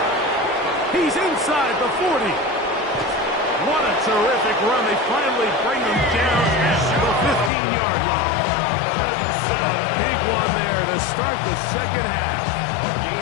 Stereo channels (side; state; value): right; drops out; at 7.5 s